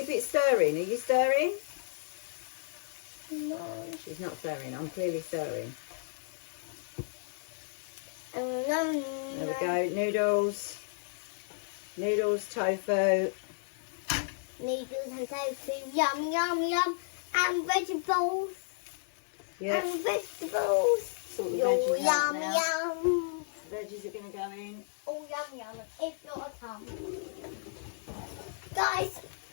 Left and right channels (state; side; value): silent; right; 56 dB below the other